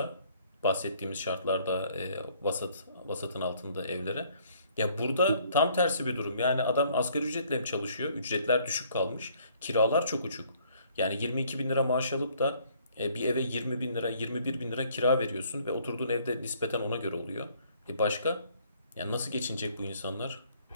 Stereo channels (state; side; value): inverted; both; correlation -0.62